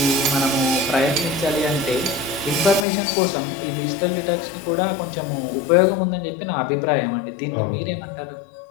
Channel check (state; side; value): drops out; right; at 2.9 s